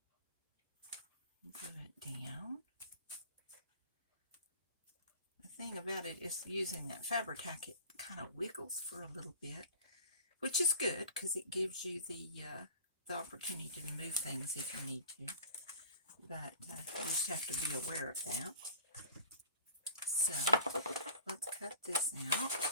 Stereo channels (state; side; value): inverted; both; correlation -0.42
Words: Glue it down. The thing about it is using that Fabri-Tac, it kind of wiggles for a little bit, which is good because it gives you the opportunity to move things if you need to. But you just have to be aware of that. So let's cut this out,